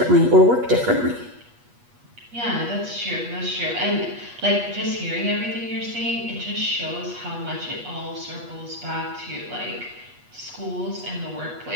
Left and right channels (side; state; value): left; late; 8.3 ms